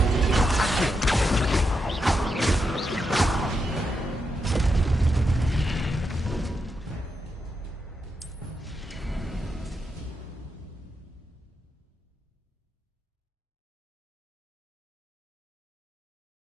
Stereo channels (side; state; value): both; normal; correlation 0.84